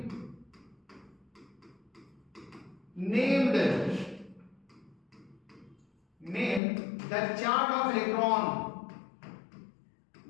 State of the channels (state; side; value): drops out; right; at 6.6 s